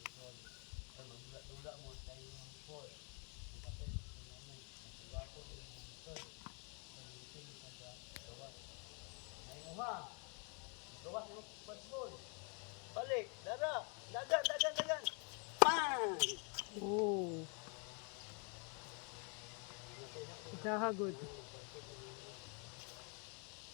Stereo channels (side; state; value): right; quieter; 37.2 dB